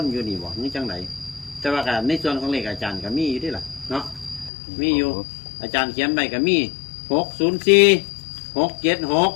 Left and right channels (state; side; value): drops out; right; at 4.5 s